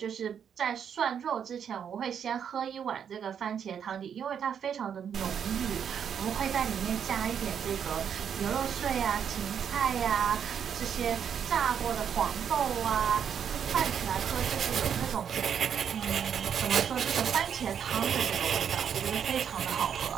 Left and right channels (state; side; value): quieter; left; 8.0 dB